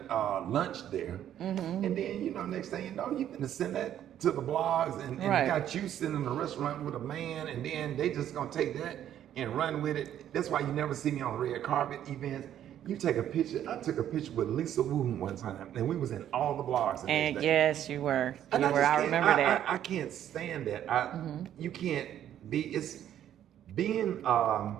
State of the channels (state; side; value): quieter; left; 10.9 dB